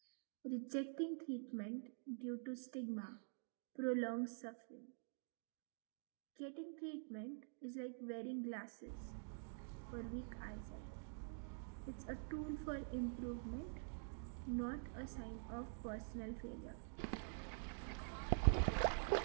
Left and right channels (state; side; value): silent; left; digital silence